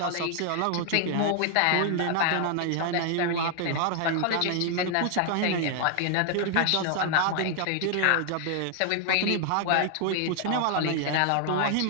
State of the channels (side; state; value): both; different; correlation 0.00